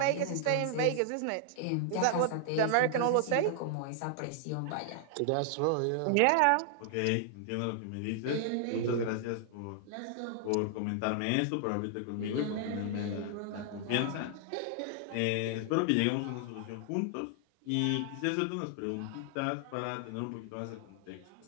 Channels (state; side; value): different; both; correlation 0.00